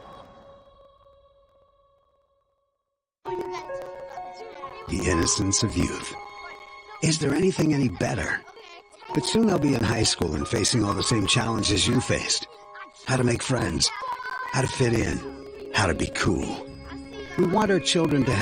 The innocence of youth. Is there anything any better? But soon they'll be in high school and facing all the same challenges you faced. How to make friends, how to fit in, how to be cool. We want our children to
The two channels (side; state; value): both; identical; correlation 1.00